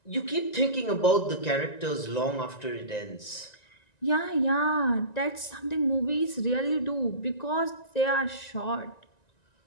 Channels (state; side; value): late; right; 1.9 ms